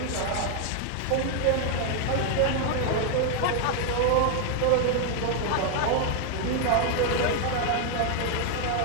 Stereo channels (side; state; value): both; different; correlation 0.00